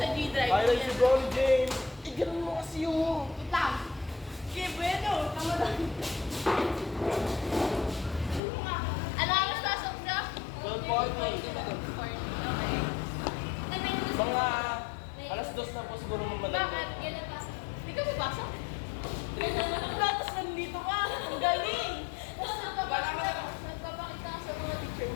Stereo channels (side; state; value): right; drops out; at 8.4 s